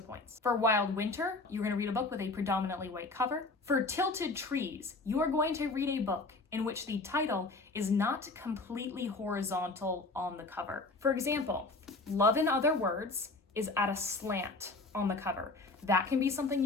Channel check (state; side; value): quieter; right; 3.3 dB